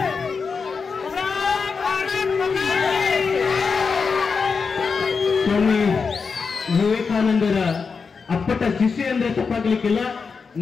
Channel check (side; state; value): right; quieter; 5.2 dB